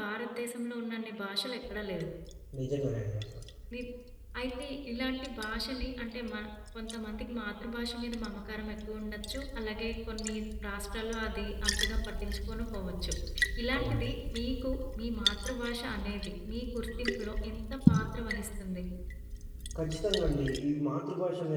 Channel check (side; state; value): both; identical; correlation 1.00